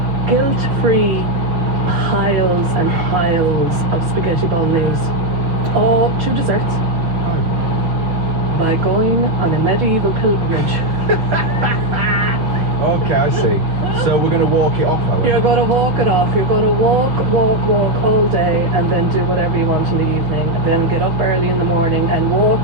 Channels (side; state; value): left; late; 6.0 ms